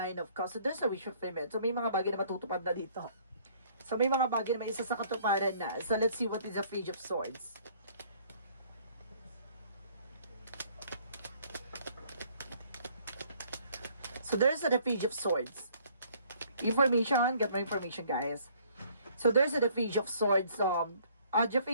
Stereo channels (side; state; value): both; inverted; correlation -0.60